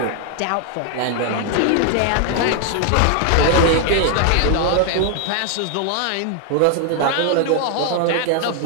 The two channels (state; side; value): different; both; correlation 0.00